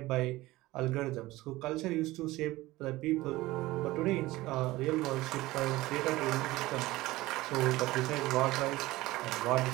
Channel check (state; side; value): quieter; left; 18.6 dB